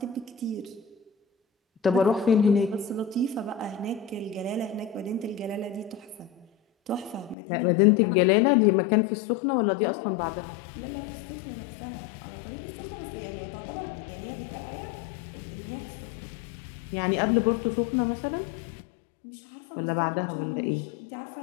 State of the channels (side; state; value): right; drops out; at 7.4 s